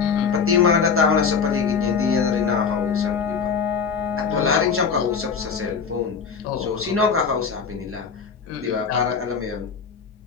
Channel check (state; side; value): quieter; right; 5.9 dB